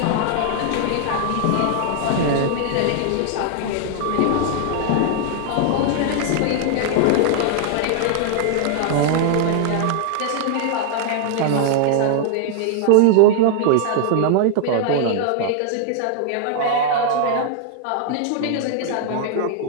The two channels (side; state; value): both; different; correlation 0.00